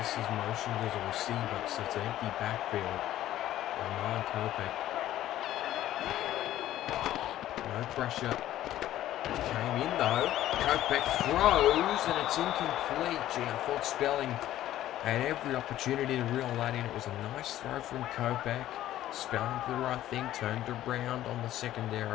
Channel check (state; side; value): quieter; right; 13.4 dB